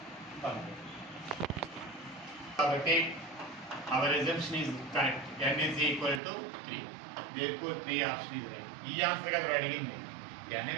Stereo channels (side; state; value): left; drops out; at 6.2 s